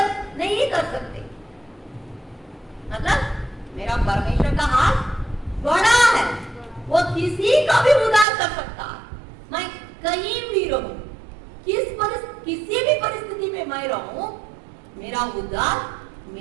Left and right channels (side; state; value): left; drops out; at 8.2 s